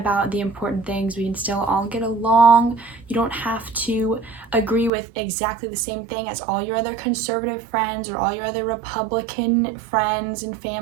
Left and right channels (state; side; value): drops out; left; at 4.9 s